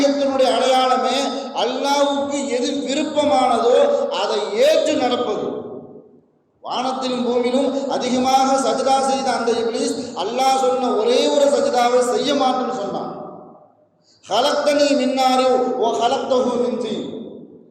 அடையாளமே அல்லாஹ்வுக்கு எது விருப்பமானதோ அதை ஏற்று நடப்பது. வானத்திலும் பூமியிலும் அதிகமாக சஜ்தா செய்த அந்த இப்லீஸ் அல்லாஹ் சொன்ன ஒரே ஒரு சஜ்தாவை செய்ய மாட்டேன்னு சொன்னான். ஹலக்தனி மின்னாரி ஓ ஹலக்தஹு மின் தீன்.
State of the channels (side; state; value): both; identical; correlation 1.00